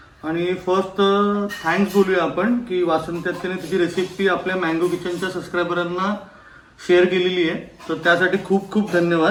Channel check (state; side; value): identical; both; correlation 1.00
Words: आणि फर्स्ट थँक्स बोलूया आपण की वासंती अक्केने तिची रेसिपी आपल्या मँगो किचनच्या सबस्क्रायबरांना शेअर केलेली आहे, तर त्यासाठी खूप खूप